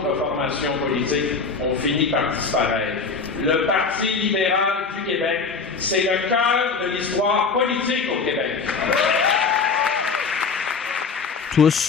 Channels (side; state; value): right; quieter; 4.8 dB